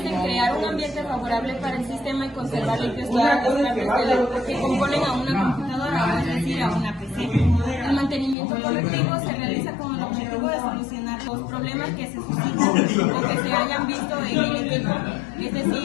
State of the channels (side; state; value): right; drops out; at 8.3 s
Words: en crear un ambiente favorable para el sistema y conservar limpios todas las partes que componen a una computadora, es decir, a una PC. El mantenimiento correctivo se realiza con el objetivo de solucionar los problemas que se suscitan o que se hayan visto en el equipo. Es